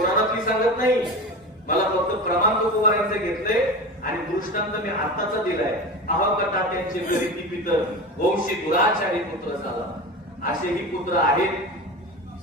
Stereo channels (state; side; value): normal; both; correlation 0.28